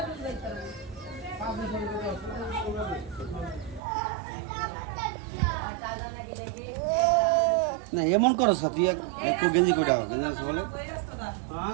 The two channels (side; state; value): left; drops out; at 3.8 s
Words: না এমন করো তুই একটু গেঞ্জি করে দাও, গেঞ্জি আছে বলে